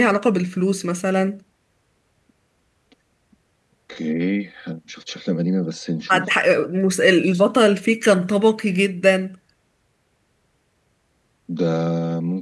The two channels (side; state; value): both; identical; correlation 1.00